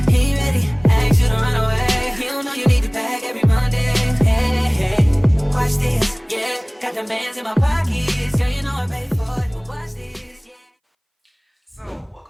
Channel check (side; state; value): both; identical; correlation 1.00